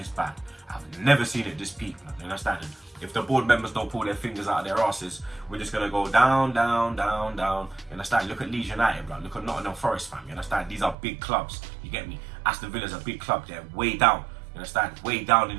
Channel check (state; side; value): drops out; left; at 11.0 s